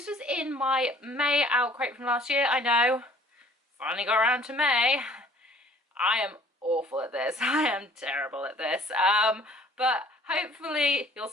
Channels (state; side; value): normal; both; correlation 0.54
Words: was in my May OwlCrate from last year. I know, finally got around to May. I am awful at this. I am terrible at this. But hopefully you'll